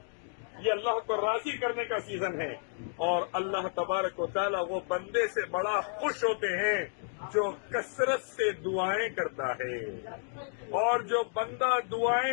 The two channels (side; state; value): right; silent; digital silence